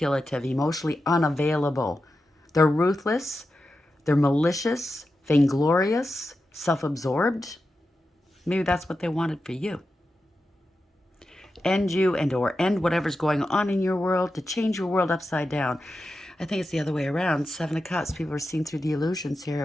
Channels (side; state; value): both; normal; correlation 0.91